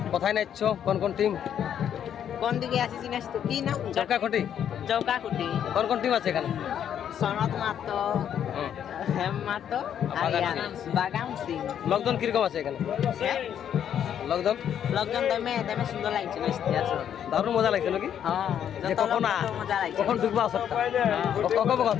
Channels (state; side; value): quieter; right; 9.4 dB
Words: কোথায় নাচছ, কোন কোন টিম? কোন দিকে আসি চিনিস তো কি নাম? চৌকাখুটি। চৌকাকুটি। কোন কোন টিম আছে এখানে? সনত মাতো, হেম মাতো, বাগাম সিং। লোকজন কিরকম আছে এখানে? লোকজন লোকজন দমে সুন্দর লাগছে নাচতে আসো। দারুণ মজা লাগছে নাকি? হ্যাঁ যে কখন মজা লাগছে। কখন ঢুকবো আসরটা কখন